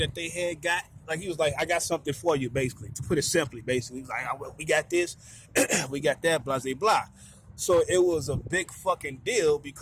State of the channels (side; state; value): both; identical; correlation 1.00